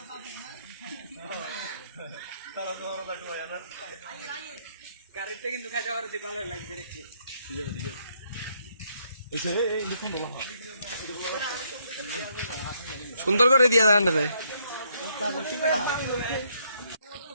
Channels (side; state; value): both; inverted; correlation -0.72